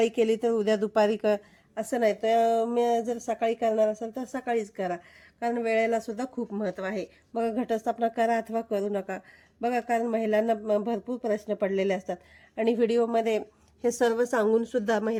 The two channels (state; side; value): identical; both; correlation 1.00